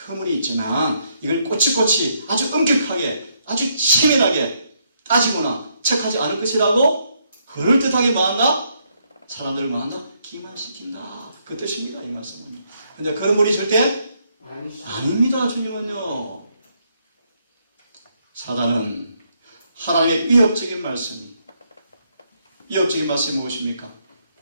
허물이 있지만 이걸 꼬치꼬치 아주 엄격하게, 아주 치밀하게 따지거나 책하지 않을 것이라고 그럴듯하게 뭐한다? 사람들을 뭐한다? 기만시킨다. 그 뜻입니다, 이 말씀은. 근데 그런 분이 절대 아닙니다, 주님은요. 사단은 하나님의 위협적인 말씀이, 위협적인 말씀이 무엇입니까?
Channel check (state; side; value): inverted; both; correlation -0.74